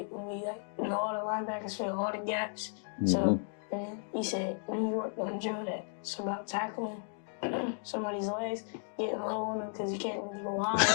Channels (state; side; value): silent; right; 55 dB below the other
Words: and we all the linebackers fill all the gaps. So and he said, we worked on drill that. It's about tackling somebody's legs, getting low on them because you can't really go high.